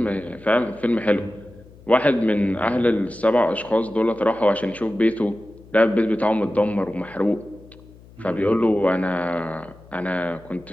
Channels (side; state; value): left; noise; hum, 23 dB below the sound